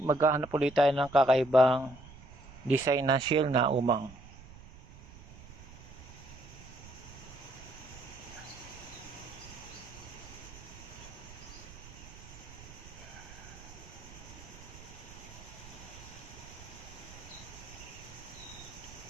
maghahanap ulit tayo ng kakaibang design ng shell na umang.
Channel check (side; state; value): right; noise; rumble, 17 dB below the sound